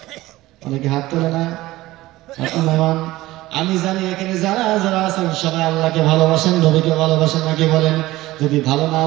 অনেকে হাত তোলে না। আমি জানি এখানে যারা যারা আছেন সবাই আল্লাহকে ভালোবাসেন, নবীকে ভালোবাসেন নাকি? বলেন, যদি ভালো না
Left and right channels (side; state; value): left; quieter; 17.6 dB